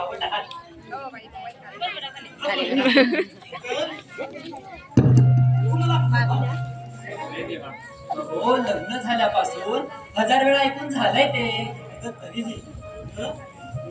आहात. हो लग्न झाल्यापासून 1000 वेळा ऐकून झालंय ते तरीही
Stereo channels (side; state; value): both; identical; correlation 1.00